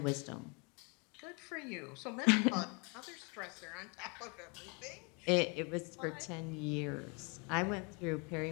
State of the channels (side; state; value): right; quieter; 32.2 dB